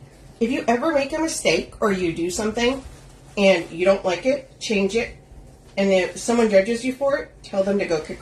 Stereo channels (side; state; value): both; identical; correlation 1.00